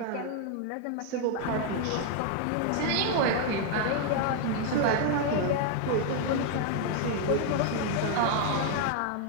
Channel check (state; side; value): different; both; correlation 0.00